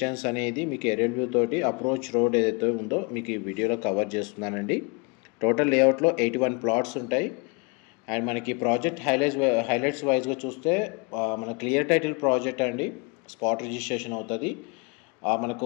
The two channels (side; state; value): right; quieter; 30.5 dB